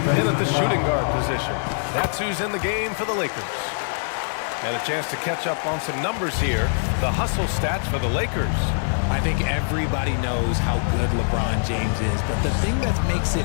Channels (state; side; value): silent; right; digital silence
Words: at the shooting guard position. That's who's in the game for the Lakers. And a chance to catch up on some numbers here. The hustle stats for the Lakers. I think everybody knows how good LeBron James is, but the thing that makes it